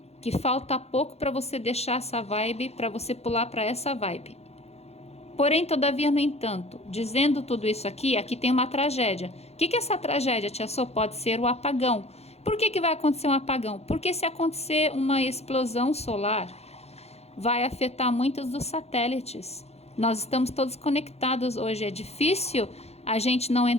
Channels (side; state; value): right; late; 0.31 ms